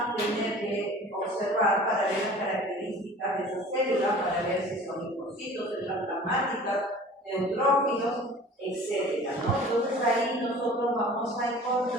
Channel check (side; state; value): both; normal; correlation 0.44